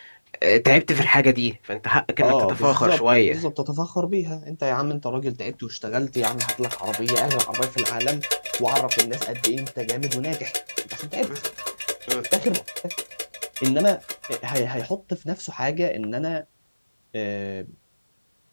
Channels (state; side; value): inverted; both; correlation -1.00